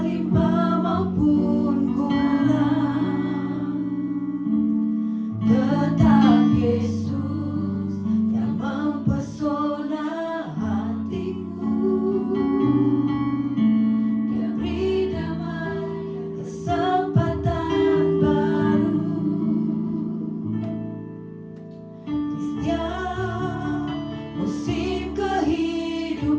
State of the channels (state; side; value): identical; both; correlation 1.00